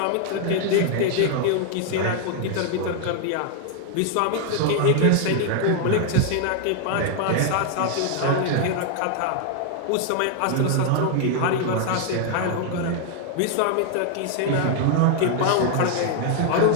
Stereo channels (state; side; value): different; both; correlation 0.00